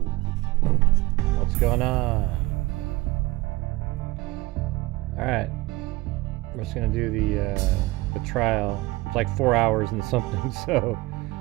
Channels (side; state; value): left; quieter; 20.4 dB